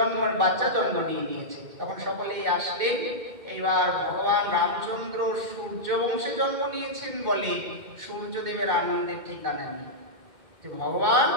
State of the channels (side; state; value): left; late; 2.1 ms